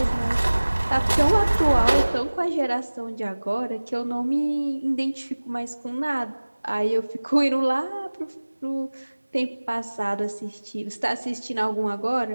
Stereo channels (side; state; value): both; inverted; correlation -1.00